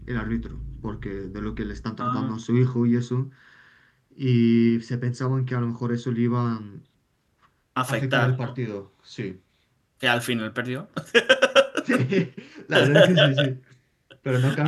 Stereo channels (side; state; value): both; identical; correlation 1.00